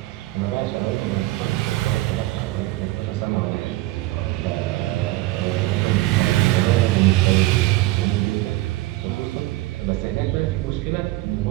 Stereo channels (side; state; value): left; quieter; 18.0 dB